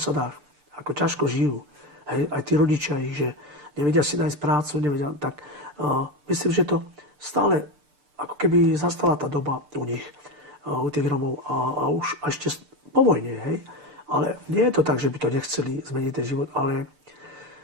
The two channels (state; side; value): late; left; 6.8 ms